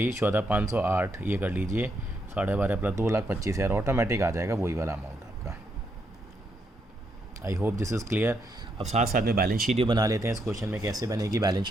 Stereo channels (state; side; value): normal; both; correlation 0.78